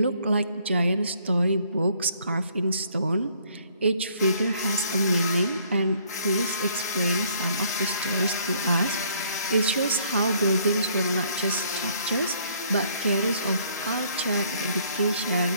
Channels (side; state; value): both; inverted; correlation -0.63